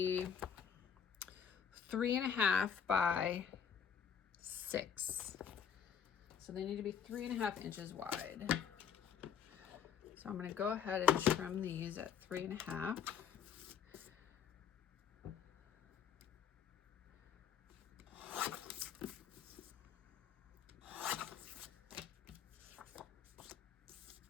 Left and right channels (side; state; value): right; quieter; 7.8 dB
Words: 3.5 by 6. So they need to be 3.5 inches wide. So I'm going to go ahead and trim these at 3.5.